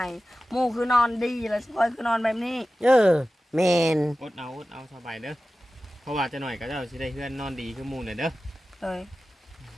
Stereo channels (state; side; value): normal; both; correlation 0.95